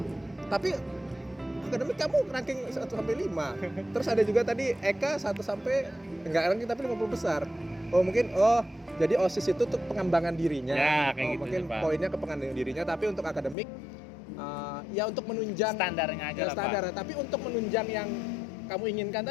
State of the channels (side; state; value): right; drops out; at 13.6 s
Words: tapi akademik kamu ranking 1 sampai 5. Terus ada juga tadi Eka 1 sampai enggak ranking tapi 50 besar. Oh, mungkin jadi OSIS itu untuk pengembangan dirinya. Ya, kayak gitu mungkin sih, Pak. poinnya ke pengembangan dirinya, tapi untuk akademik ya untuk menunjang Standarnya aja lah standar, Pak. tapi untuk menunjang yang kamu inginkan